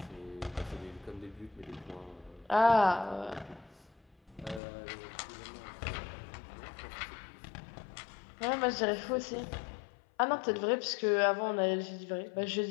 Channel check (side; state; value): right; drops out; at 4.6 s